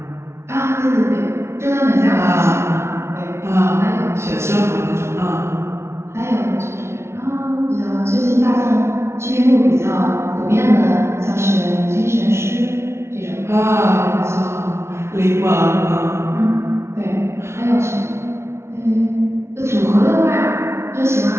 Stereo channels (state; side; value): late; left; 0.13 ms